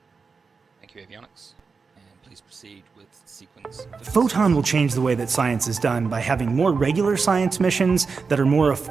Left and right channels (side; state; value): left; quieter; 4.9 dB